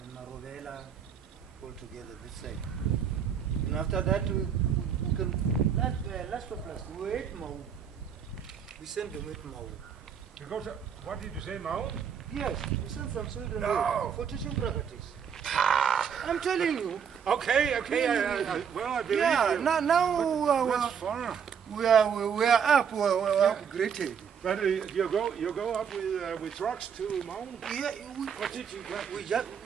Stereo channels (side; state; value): left; quieter; 7.4 dB